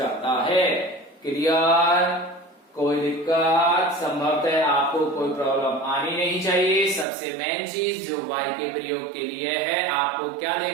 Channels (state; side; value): drops out; left; at 7.1 s